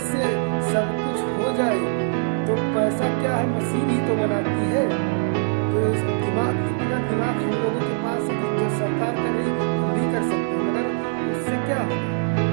से सब कुछ हो जाए तो पैसा क्या है, मशीन ही तो बनाती है। तो इतना दिमाग हम लोगों के पास है कि जो सरकार कर रही हम भी कर सकते हैं, मगर उससे क्या होगा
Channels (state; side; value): silent; left; digital silence